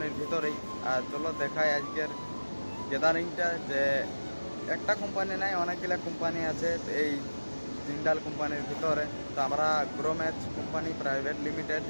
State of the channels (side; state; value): both; inverted; correlation -1.00